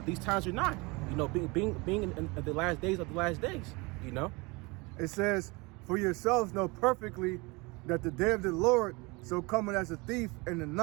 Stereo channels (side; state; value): left; quieter; 26.3 dB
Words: these times are nigh. Being in the last days of the last days. It says, for yourselves know perfectly that the day of the Lord so coming as a thief in the